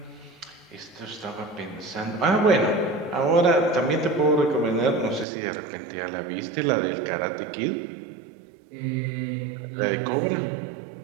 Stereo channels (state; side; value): drops out; left; at 5.2 s